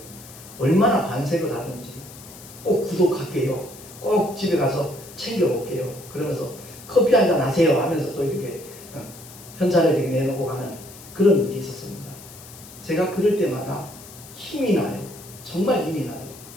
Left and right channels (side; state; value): left; noise; hiss, 18 dB below the sound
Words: 얼마나 반색을 하든지 꼭 구독할게요. 꼭 집에 가서 챙겨올게요. 그러면서 커피 한잔 하세요 하면서 또 이렇게 현찰을 이렇게 내놓고 가는 그런 일이 있었습니다. 제가 그럴 때마다 힘이 나요. 정말 힘이 나요.